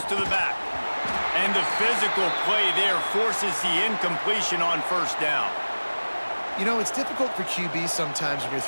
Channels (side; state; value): both; inverted; correlation -1.00